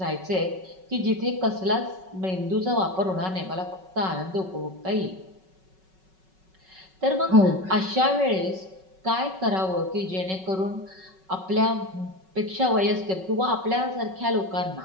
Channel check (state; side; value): late; left; 5.3 ms